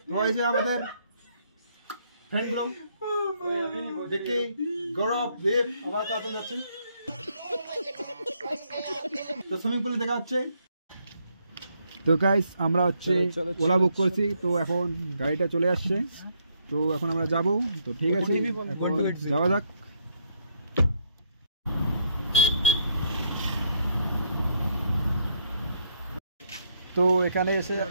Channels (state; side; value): inverted; both; correlation -0.73